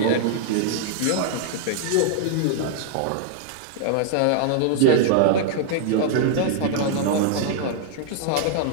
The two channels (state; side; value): different; both; correlation -0.01